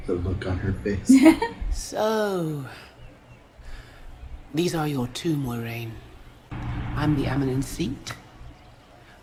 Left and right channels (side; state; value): both; identical; correlation 1.00